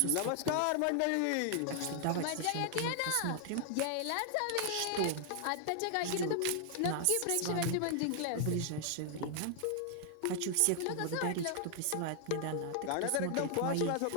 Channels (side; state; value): both; different; correlation 0.00